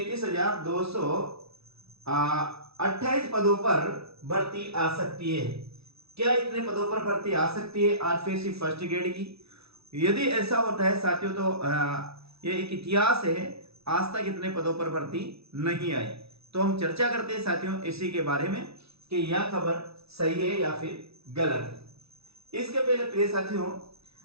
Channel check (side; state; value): left; late; 0.78 ms